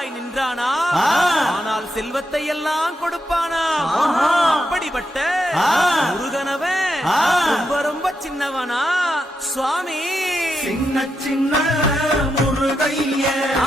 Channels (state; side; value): normal; both; correlation 0.84